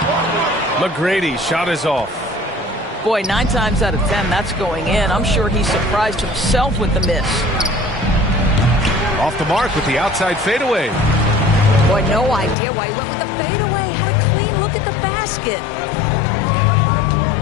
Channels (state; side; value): drops out; right; at 12.6 s